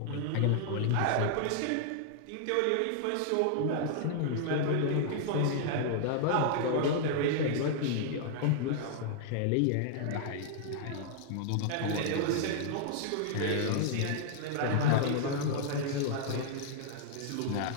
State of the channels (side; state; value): both; different; correlation -0.01